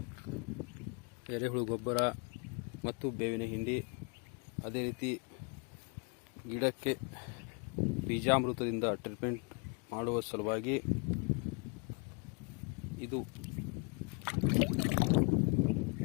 ಎರೆಹುಳು ಗೊಬ್ಬರ ಮತ್ತು ಬೇವಿನ ಹಿಂಡಿ, ಅದೇ ರೀತಿ ಗಿಡಕ್ಕೆ ಬೀಜಾಮೃತದಿಂದ ಟ್ರೀಟ್ಮೆಂಟ್ ಮಾಡುವ ಸಲುವಾಗಿ ಇದು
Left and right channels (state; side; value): quieter; right; 34.4 dB